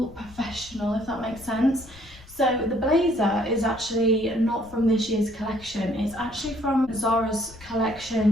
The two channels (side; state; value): left; noise; rumble, 21 dB below the sound